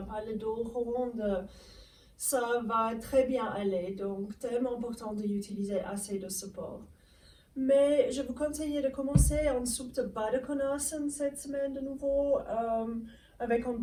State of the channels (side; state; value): both; identical; correlation 1.00